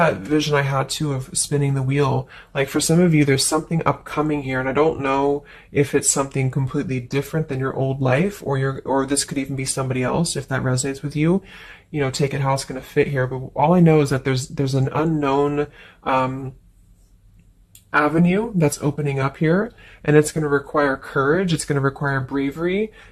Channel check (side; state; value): both; identical; correlation 1.00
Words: vision I had too of spinning the wheel. Like for some of you, there's something upcoming here, and I don't know if it's something completely different than your old life, or this could even be somebody else. If that resonates with you, you know, take it how it's going to fit here. But all I know is that there's an unknown avenue that's opening up here, and it's going to require courage, it's going to require bravery,